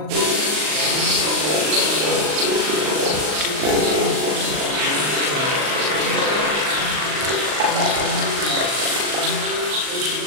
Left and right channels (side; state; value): left; late; 39 ms